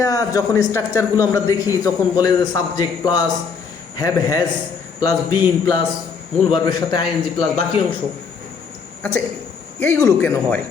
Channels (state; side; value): quieter; right; 5.7 dB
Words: যখন স্ট্রাকচারগুলো আমরা দেখি তখন বলে যে subject plus have has plus been plus মূল ভার্বের সাথে আইএনজি প্লাস বাকি অংশ। আচ্ছা এইগুলো কেন হয়?